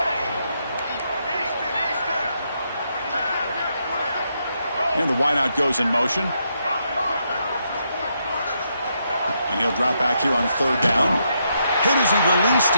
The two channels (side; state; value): both; inverted; correlation -0.79